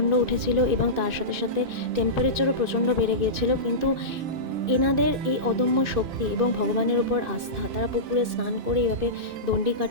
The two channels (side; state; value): left; late; 2.5 ms